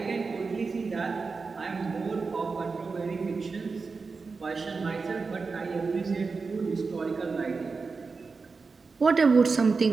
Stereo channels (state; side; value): quieter; left; 4.5 dB